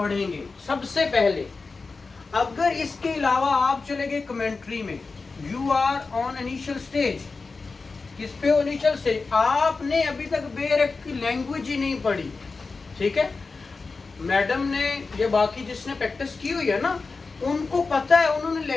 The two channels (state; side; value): quieter; right; 4.2 dB